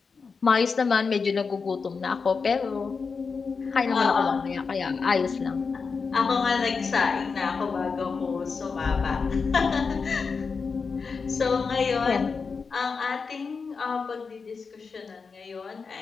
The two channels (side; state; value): right; quieter; 5.1 dB